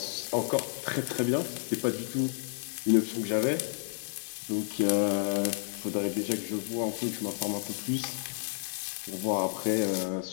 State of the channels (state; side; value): silent; right; 57 dB below the other